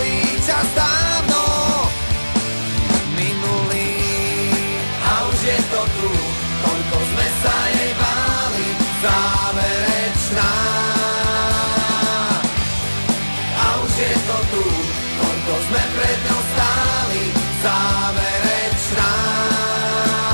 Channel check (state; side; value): inverted; both; correlation -1.00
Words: Čas dávno minulý a už je to tu, koľko sme sa jej báli, záverečná. A už je to tu, koľko sme pred ňou stáli, záverečná.